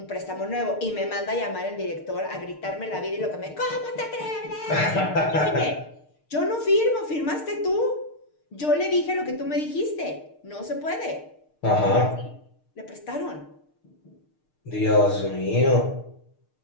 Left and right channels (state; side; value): late; right; 6.6 ms